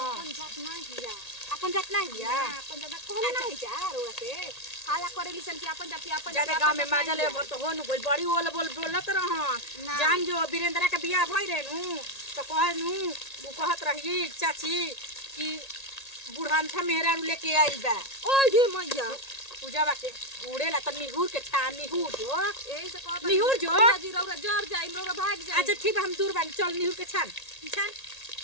अपन जात ना हिया। अपन जात नहीं हिया अपन जात कहले नहीं जा रउआ से हाला करेली सन कि अपन जाति अपन ज्यादा गांव में माजा ले भर तो हो नु बोल बड़ी बोलत रहन। जान जो वीरेंद्र के बियाह भई रे नु तो कह नु वो कहत रही चाची कि बुढ़ानथा मेहरा लेके आई बा। ओए ये मैया पूजा के उड़ेला त निहुर के छा निहुर जो एही से कहत निहुर जो जी रउरा जर जाई रउरा भाग जाई। अच्छा ठीक है हम दूर बानी चल निहुर के छान छान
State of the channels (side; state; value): right; late; 1.8 ms